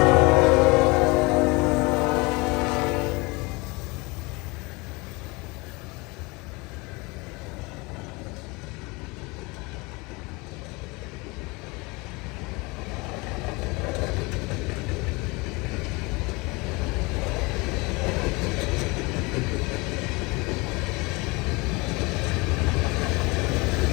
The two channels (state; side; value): quieter; right; 25.7 dB